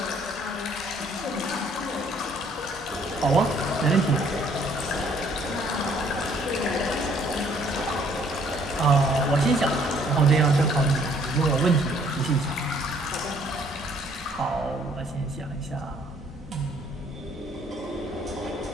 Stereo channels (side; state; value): both; normal; correlation 0.62